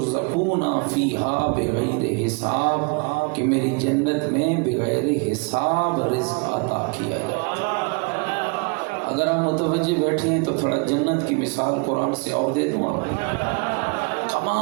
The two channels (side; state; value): left; quieter; 33.3 dB